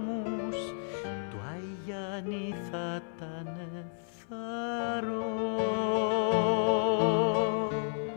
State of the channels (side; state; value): right; silent; 56 dB below the other